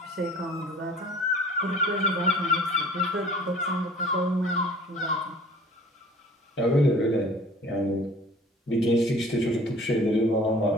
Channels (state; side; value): normal; both; correlation 0.49